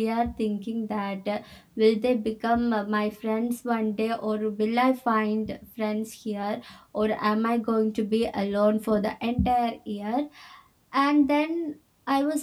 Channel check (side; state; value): both; identical; correlation 1.00